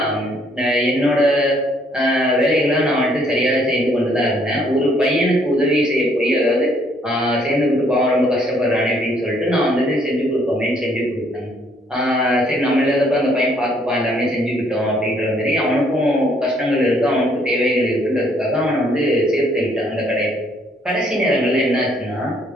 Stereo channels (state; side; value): normal; both; correlation 0.66